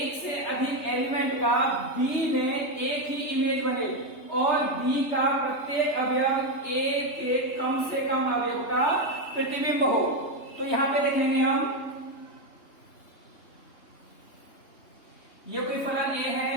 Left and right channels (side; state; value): right; late; 3.2 ms